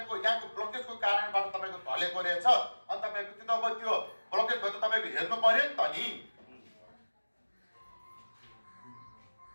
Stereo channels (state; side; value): inverted; both; correlation -1.00